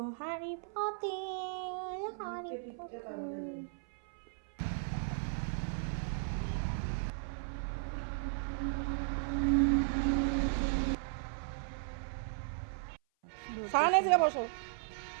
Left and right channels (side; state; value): left; silent; 54 dB below the other